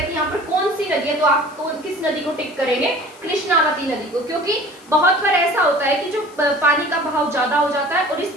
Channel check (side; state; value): left; noise; hiss, 26 dB below the sound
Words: कि यहाँ पर कौन सी नदी है, तो आप किस नदी को टिक करेंगे? कृष्णावती नदी को, क्योंकि बहुत बार ऐसा होता है कि जो पानी का बहाव ज्यादा हो जाता है और इस